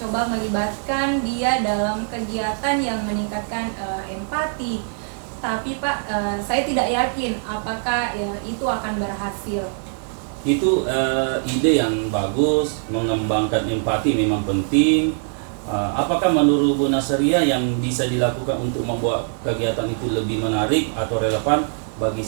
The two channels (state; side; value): silent; left; 64 dB below the other